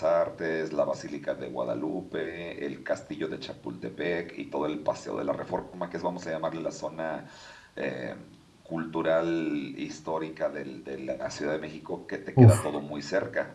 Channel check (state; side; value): identical; both; correlation 1.00